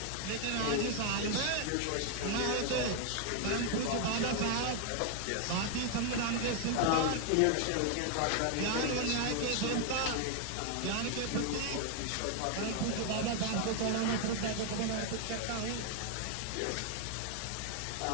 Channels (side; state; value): both; different; correlation 0.00